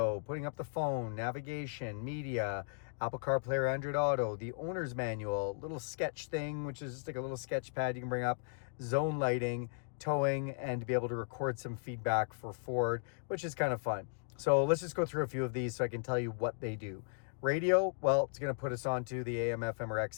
putting up the phone, navigation, media, Apple CarPlay or Android Auto, the owner's manual, little sketch thing, which is just like a little sketch pad you can bring up, zone lighting, towing, and to be able to record some feedback for Ford, which is kind of fun. So let's just go through a few of these so I can tell you what they do. Radio, well, it's going to put us onto the AM, FM, or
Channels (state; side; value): silent; right; digital silence